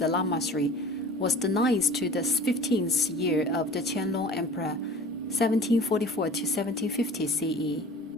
lamasery, was the 9th to the 15th year of the Qianlong Emperor, 1744 to 1750 CE.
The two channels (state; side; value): normal; both; correlation 0.43